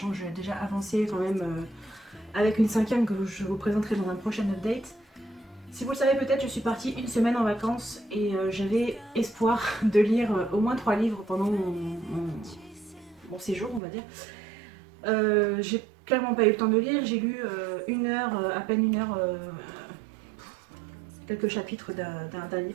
que j'ai déjà avancé quand même avec une 5e que je vous présenterai dans un prochain update. Si vous le savez peut-être, je suis partie une semaine en vacances et j'avais espoir de lire au moins 3 livres pendant mon séjour, on va dire. J'ai clairement pas eu le temps de lire, j'ai lu une heure, à peine une heure, quelques chapitres d'un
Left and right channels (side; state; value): left; drops out; at 13.8 s